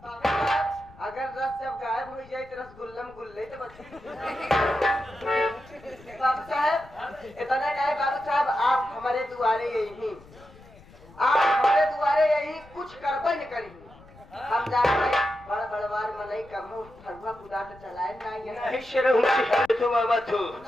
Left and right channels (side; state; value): left; noise; rumble, 23 dB below the sound